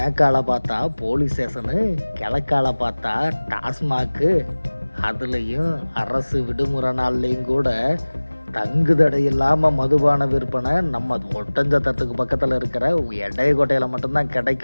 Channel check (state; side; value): inverted; both; correlation -1.00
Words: பார்த்தா போலீஸ் ஸ்டேஷனு, கிழக்கால பார்த்தா டாஸ்மாக்கு, அதுலேயும் அரசு விடுமுறை நாள்லேயும் கூட தங்குதடை இல்லாமல் மதுபான விற்பனை நம்ம ஒட்டஞ்சத்திரத்துக்கு பக்கத்தில் இருக்கிற எடையக்கோட்டையில் மட்டும்தான்